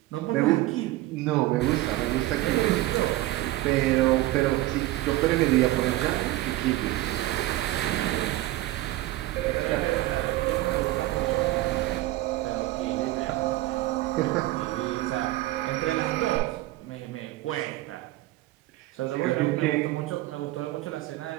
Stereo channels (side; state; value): left; quieter; 17.0 dB